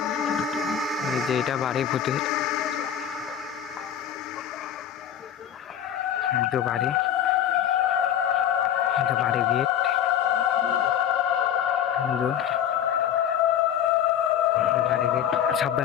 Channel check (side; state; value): right; quieter; 9.6 dB